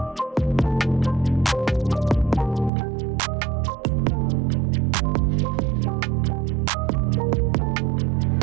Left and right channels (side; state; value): left; drops out; at 2.7 s